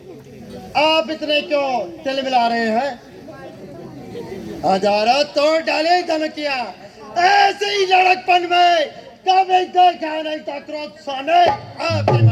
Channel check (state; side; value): identical; both; correlation 1.00